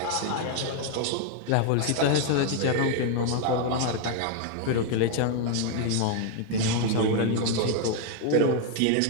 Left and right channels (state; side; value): different; both; correlation 0.00